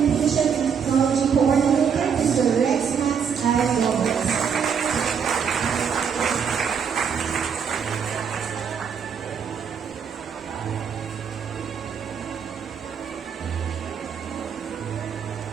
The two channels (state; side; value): quieter; left; 7.0 dB